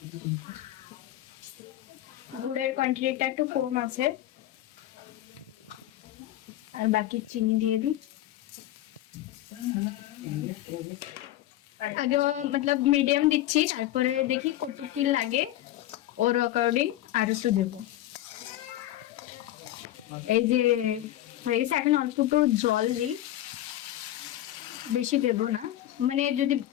গুড়ের কোয়ান্টিটিটা একটু কম আছে, আর বাকি চিনি দিয়ে দিই। আগে মতলব মিডিয়াম দিচ্ছি, তারপরে দেখি কতটুকু লাগে ওর অ্যাকর্ডিং আর একটু দেবো। এই যে হয়ে গেছে, এখন অল্প একটু জল দিই, বেশি দেবো না, মানে যদি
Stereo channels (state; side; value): quieter; right; 13.8 dB